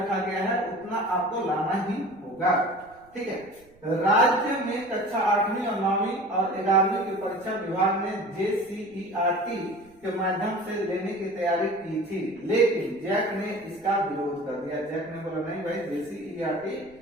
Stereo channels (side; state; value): right; noise; rumble, 28 dB below the sound